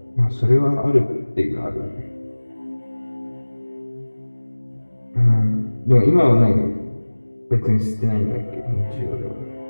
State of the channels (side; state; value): both; inverted; correlation -1.00